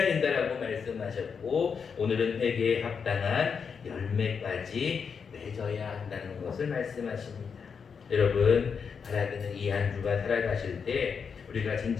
된다라고 말씀하셨고, 오늘은 회개에 합당한 열매까지 맺어야 한다는 것을 말씀하십니다. 여러분, 바라기는 이 한 주간 살아가실 때 우리가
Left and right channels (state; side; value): quieter; right; 6.2 dB